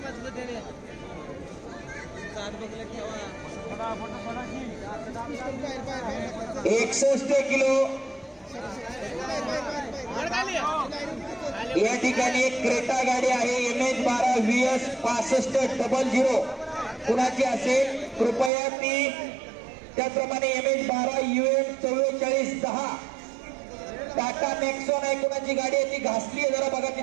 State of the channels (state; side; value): drops out; left; at 18.5 s